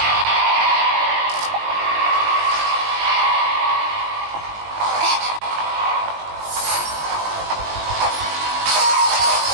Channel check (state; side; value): late; left; 20 ms